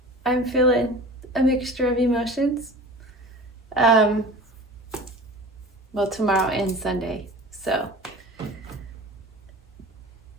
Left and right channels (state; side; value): normal; both; correlation 0.38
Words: I'm feeling a mixture of emotions. Tomorrow and Sunday. So